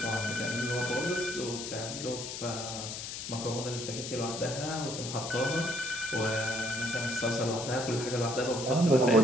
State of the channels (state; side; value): noise; left; hiss, 7 dB below the sound